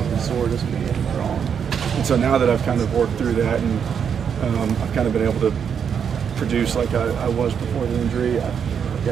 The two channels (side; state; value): left; quieter; 7.4 dB